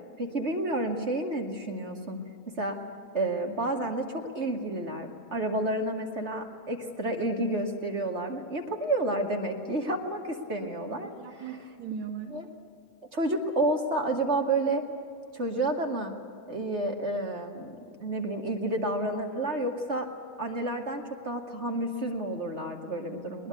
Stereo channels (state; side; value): late; left; 3.2 ms